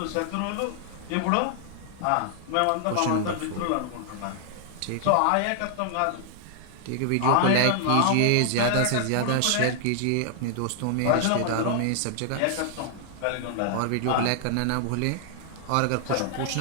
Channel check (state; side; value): different; both; correlation 0.00